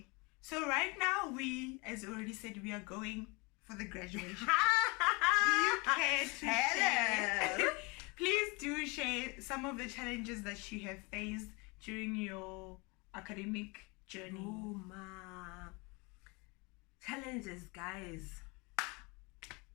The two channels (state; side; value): quieter; right; 28.2 dB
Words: So right now we, as already said, we are going for the graduation. Do you care to share? Please do share some of the challenges that you have faced during your academic journey. Oh ma. Challenges, guys.